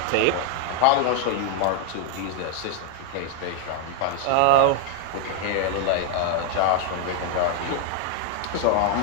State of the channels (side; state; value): both; different; correlation 0.00